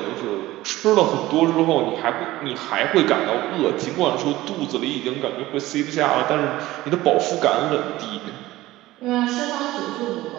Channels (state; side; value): quieter; left; 17.1 dB